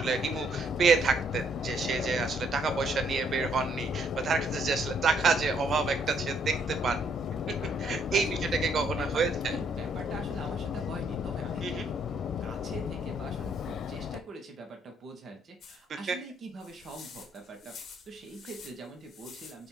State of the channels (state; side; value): normal; both; correlation 0.69